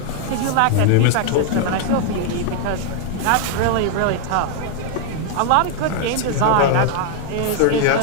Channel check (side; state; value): both; different; correlation 0.00